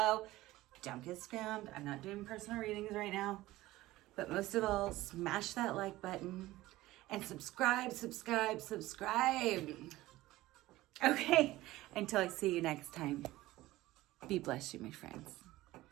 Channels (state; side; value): quieter; left; 17.3 dB